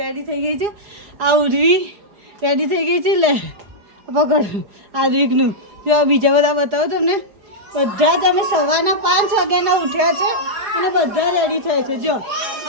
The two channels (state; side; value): late; left; 4.9 ms